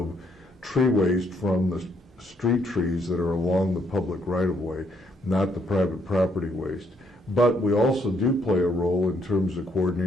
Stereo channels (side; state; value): both; normal; correlation 0.71